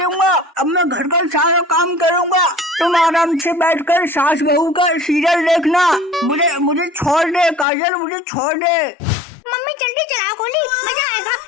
अब मैं घर का सारा काम करूंगा। तुम आराम से बैठकर सास बहू का सीरियल देखना। मुझे छोड़ दे काजल, मुझे छोड़ दे। मम्मी जल्दी चलाओ गोली, मजा आएगा।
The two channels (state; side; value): drops out; right; at 7.7 s